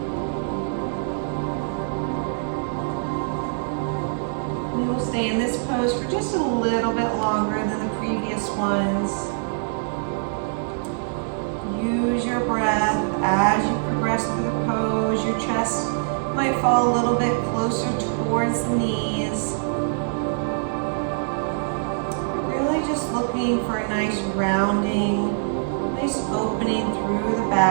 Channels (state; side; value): silent; left; digital silence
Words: We will stay in this pose for just a little bit longer than the previous ones. Use your breath as you progress through the pose. Your chest might fall a little bit closer towards the knees. Really just looking for a nice rounding, nice opening through the